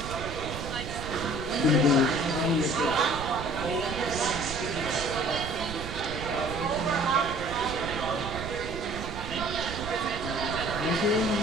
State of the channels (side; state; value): right; noise; rumble, 9 dB below the sound